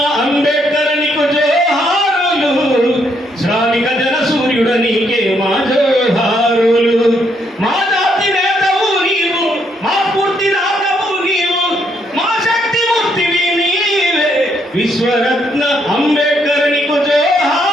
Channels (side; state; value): both; normal; correlation 0.73